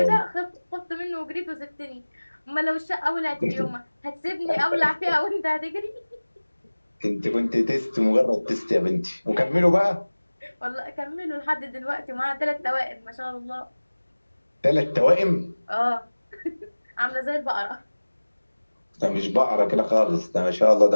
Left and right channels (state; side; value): inverted; both; correlation -1.00